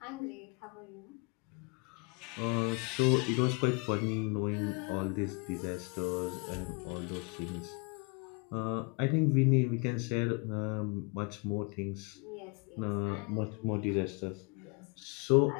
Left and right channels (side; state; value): right; quieter; 32.8 dB